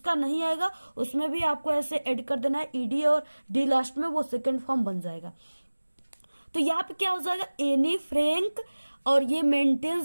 नहीं आएगा उसमें भी आपको ऐसे ऐड कर देना है, ईडी और डी लास्ट में, वो सेकेंड फॉर्म बन जाएगा। तो यहाँ पे क्या हो जाएगा, एनी फ्रैंक, और ये मेंटेन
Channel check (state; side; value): inverted; both; correlation -1.00